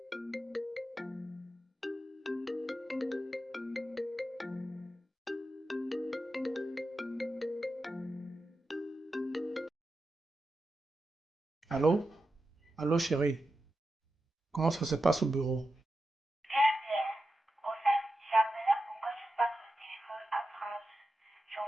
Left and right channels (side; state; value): both; normal; correlation 0.90